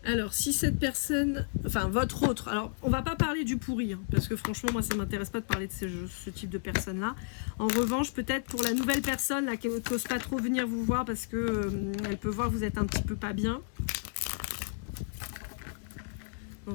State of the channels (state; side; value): silent; right; 56 dB below the other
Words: Alors, si cette personne, enfin votre autre, alors on va pas parler du pourri, hein, parce que franchement, moi ça m'intéresse pas de parler de ce type de personne-là. En revanche, peut-être pour la nouvelle personne là, qui n'ose pas trop venir vous voir parce que elle peut voir que vous êtes un petit peu pas bien. Dans